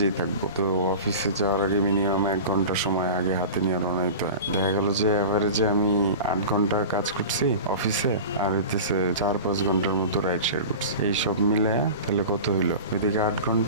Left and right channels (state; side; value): inverted; both; correlation -0.33